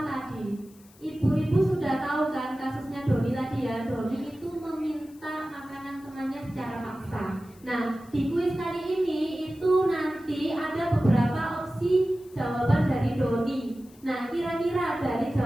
tadi. Ibu-ibu sudah tahu kan kasusnya Doni tadi ya. Doni itu meminta makanan temannya secara paksa. Nah, di kuis kali ini itu nanti ada beberapa opsi jawaban dari Doni. Nah, kira-kira dari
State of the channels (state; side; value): noise; left; hiss, 27 dB below the sound